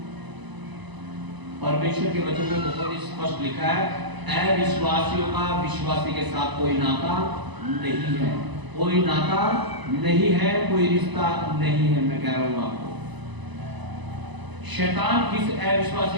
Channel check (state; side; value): late; left; 1.0 ms